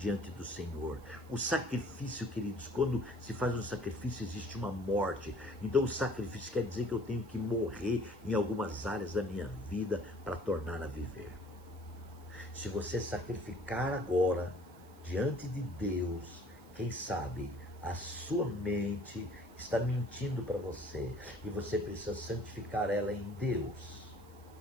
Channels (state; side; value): noise; right; hiss, 26 dB below the sound